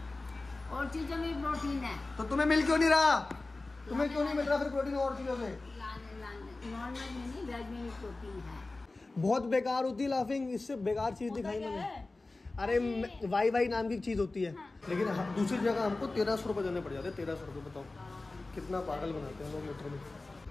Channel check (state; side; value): quieter; right; 3.2 dB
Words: और चीजों में प्रोटीन है। तो तुम्हें मिल क्यों नहीं रहा? तुम्हें क्यों नहीं मिल रहा फिर प्रोटीन और चीजों से? नॉर्मल में नहीं, वेज में भी प्रोटीन है। बहुत बेकार होती है लाफिंग, इससे बेकार चीज दिखाई मैंने। अरे वाई वाई नाम की चीज होती है। लेकिन दूसरी जगह हमको 1300 रुपये देने पड़ जाते हैं। 1300 रुपये बताओ कितना पागल बनाते हैं लोग लीटर में।